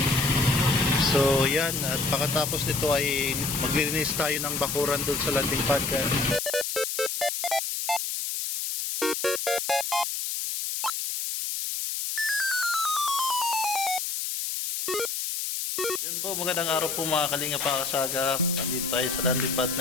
So yan, at pagkatapos nito ay maglilinis tayo ng bakuran doon sa landing pad. Yan po, magandang araw po mga Kalinga Pakasaga. Nandito tayo sa landing pad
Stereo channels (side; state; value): left; noise; hiss, 3 dB below the sound